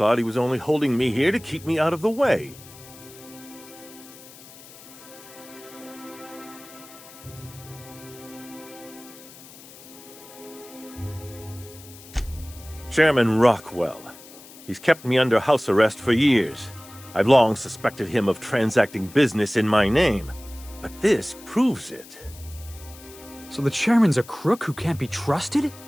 he was only holding me here to keep me out of the way. Chairman Rockwell. He's kept me under house arrest for years. I've long suspected him of transacting business in my name, but this proves it. So the chairman's a crook who can't be trusted?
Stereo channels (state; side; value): noise; left; hiss, 19 dB below the sound